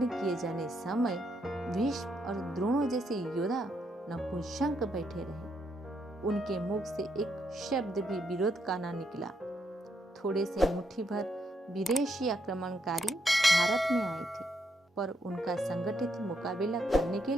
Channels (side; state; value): both; normal; correlation 0.77